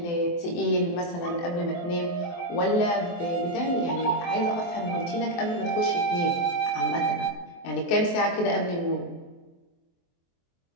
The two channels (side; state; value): right; late; 23 ms